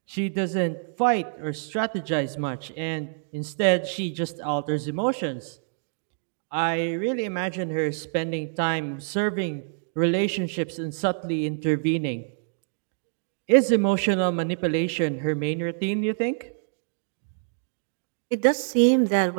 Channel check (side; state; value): left; silent; digital silence